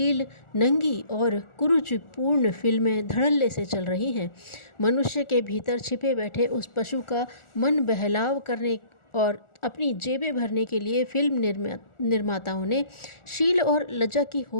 नंगी और कुरुचिपूर्ण फिल्में धड़ल्ले से चल रही हैं। मनुष्य के भीतर छिपे बैठे उस पशु का मन बहलाव करने और अपनी जेबें भरने के लिए फिल्म निर्माताओं ने शील और लज्जा की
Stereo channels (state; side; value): late; right; 1.4 ms